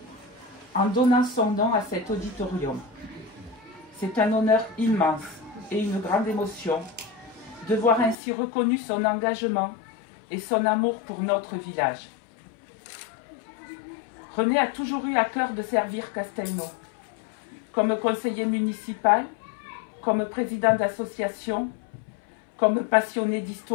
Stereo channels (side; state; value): right; drops out; at 8.2 s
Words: en donnant son nom à cet auditorium. C'est un honneur immense et une grande émotion de voir ainsi reconnu son engagement et son amour pour notre village. René a toujours eu à cœur de servir Castelnau, comme conseiller municipal, comme président d'association, comme passionné